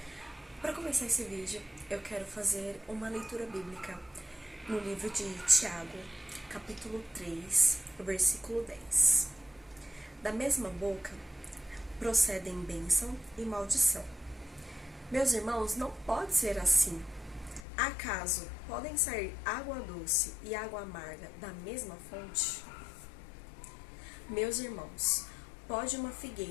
Para começar esse vídeo, eu quero fazer uma leitura bíblica no livro de Tiago, capítulo 3, versículo 10. Da mesma boca procedem bênção e maldição. Meus irmãos, não pode ser assim. Acaso podem sair água doce e água amarga da mesma fonte? Meus irmãos, pode uma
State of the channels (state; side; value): drops out; right; at 17.7 s